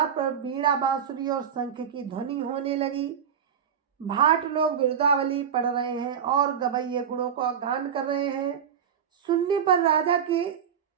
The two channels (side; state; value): left; quieter; 7.9 dB